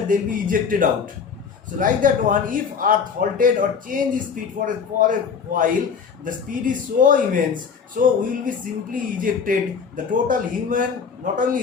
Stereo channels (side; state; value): right; quieter; 6.2 dB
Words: they'll be ejected out. So like that one, if earth halted or changed speed for a while, the speed is so immense, so we will be simply ejected. The total human, not